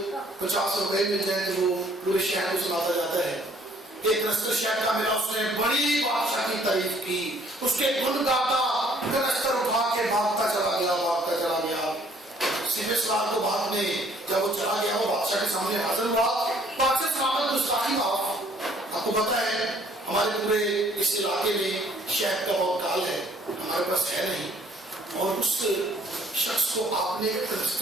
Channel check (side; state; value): both; normal; correlation 0.60